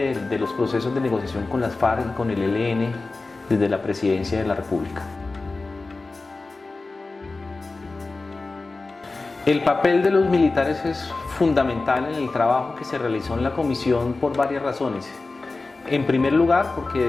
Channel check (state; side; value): quieter; right; 3.5 dB